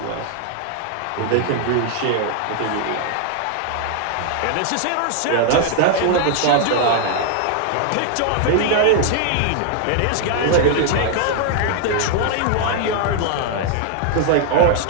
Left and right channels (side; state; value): both; different; correlation 0.00